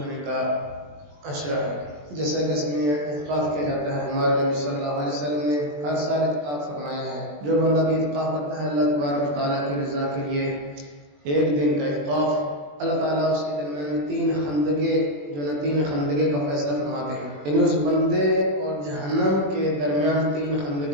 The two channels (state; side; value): late; left; 21 ms